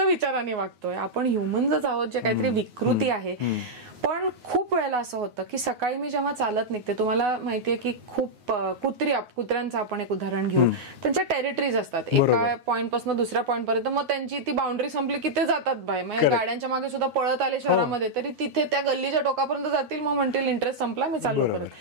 वागतोय. आपण ह्युमन्सच आहोत जे काहीतरी विकृती आहे. पण खूप वेळेला असं होतं की सकाळी मी जेव्हा चालत निघते, तुम्हाला माहितीये की खूप कुत्र्यांचं आपण एक उदाहरण घेऊ, त्यांच्या टेरिटरीज असतात, एका पॉइंट पासून दुसऱ्या पॉइंट पर्यंत, मग त्यांची ती बाउंड्री संपली की ते जातात बाहेर. म्हणजे गाड्यांच्या मागे सुद्धा पळत आले शहरामध्ये तरी तिथे त्या गल्लीच्या टोकापर्यंत जातील, मग म्हणतील इंटरेस्ट संपला, मी चाललो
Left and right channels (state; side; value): late; left; 9.5 ms